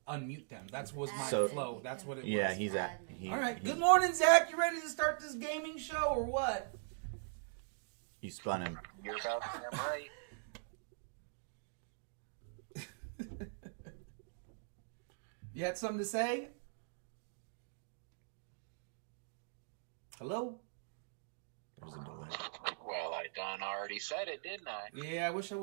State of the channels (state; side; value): silent; left; digital silence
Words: unmute them. That was my So- flow. That's what it Yeah, was. he's at. All right. Good morning, Zach. You ready to start this gaming show or what? You spun him. You're about damn right. You had something to say? Hello? There's a delay. Well, I done already said it, didn't I? Yeah, I wish I